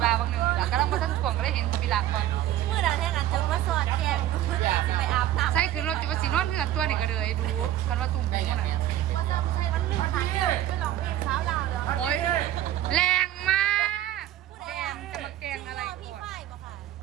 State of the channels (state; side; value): quieter; left; 12.8 dB